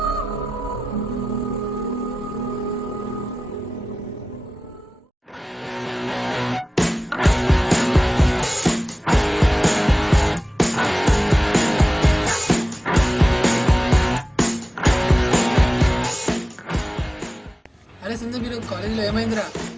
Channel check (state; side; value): normal; both; correlation 0.95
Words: అరే సంజయ్, మీరు కాలేజీలో ఏమైందిరా?